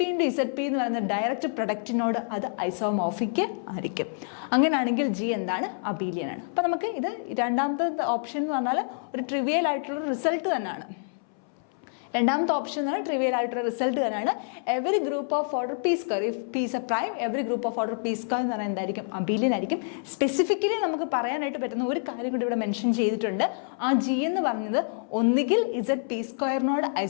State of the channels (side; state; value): right; silent; 60 dB below the other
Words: × ZP എന്ന് പറയുന്ന ഡയറക്റ്റ് പ്രൊഡക്റ്റിനോട് അത് ഐസോമോർഫിക് ആയിരിക്കും. അങ്ങനെയാണെങ്കിൽ G എന്താണ്? അബീലിയൻ ആണ്. അപ്പം നമുക്ക് ഇത് രണ്ടാമത്തെ ഓപ്ഷൻ എന്ന് പറഞ്ഞാൽ ഒരു ട്രിവിയൽ ആയിട്ടുള്ള റിസൾട്ട് തന്നെയാണ്. രണ്ടാമത്തെ ഓപ്ഷൻ എന്ന് പറഞ്ഞാൽ ട്രിവിയൽ ആയിട്ടുള്ള റിസൾട്ട് തന്നെയാണ്. Every group of order P square, if P is a prime, every group of order P square എന്ന് പറഞ്ഞാൽ എന്തായിരിക്കും? അബീലിയൻ ആയിരിക്കും. സ്പെസിഫിക്കലി നമുക്ക് പറയാനായിട്ട് പറ്റുന്ന ഒരു കാര്യം കൂടി ഇവിടെ മെൻഷൻ ചെയ്തിട്ടുണ്ട്. ആ G എന്ന് പറഞ്ഞത് ഒന്നുകിൽ ZP സ്ക്വയറിനോട്